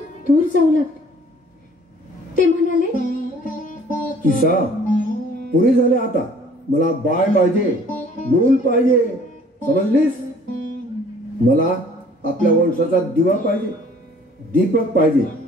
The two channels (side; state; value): both; normal; correlation 0.55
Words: दूर जाऊ लागले. ते म्हणाले, किसा, पुरे झाले आता. मला बाळ पाहिजे, मूल पाहिजे, समजलीस? मला आपल्या वंशाचा दिवा पाहिजे, दीपक पाहिजे.